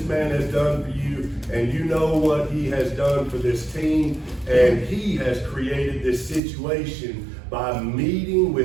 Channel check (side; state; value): left; drops out; at 6.4 s